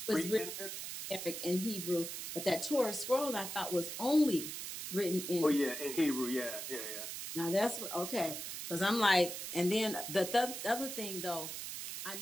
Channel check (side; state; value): right; noise; hiss, 6 dB below the sound